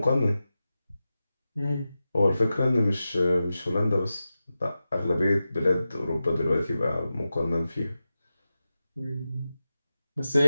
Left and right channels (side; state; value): both; inverted; correlation -0.93